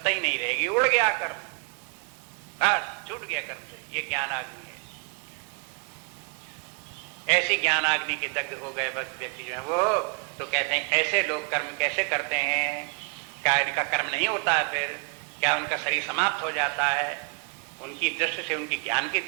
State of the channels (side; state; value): left; quieter; 37.2 dB